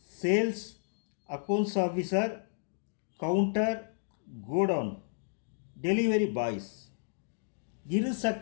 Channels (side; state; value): right; silent; digital silence